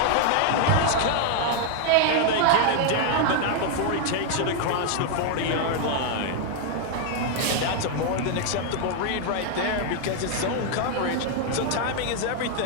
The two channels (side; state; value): both; different; correlation 0.00